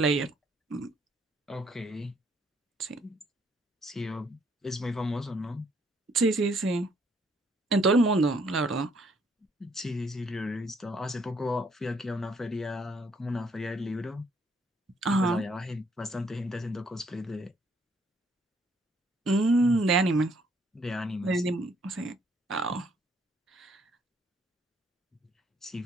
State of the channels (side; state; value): both; normal; correlation 0.68